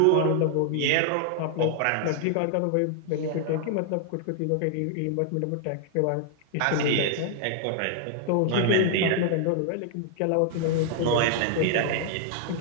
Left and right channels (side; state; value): both; different; correlation 0.00